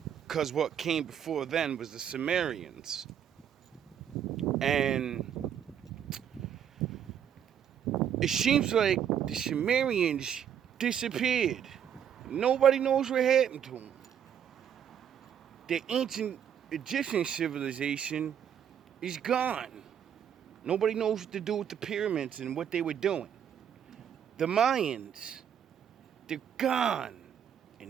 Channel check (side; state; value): left; quieter; 8.9 dB